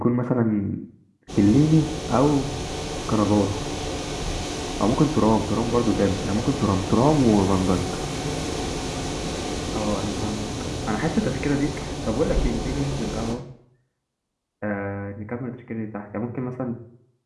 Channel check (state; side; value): identical; both; correlation 1.00